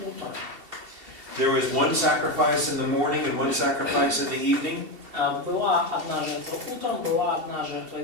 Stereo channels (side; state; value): left; late; 2.7 ms